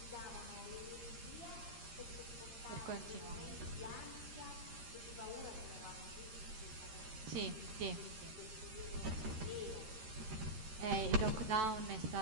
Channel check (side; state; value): left; late; 13 ms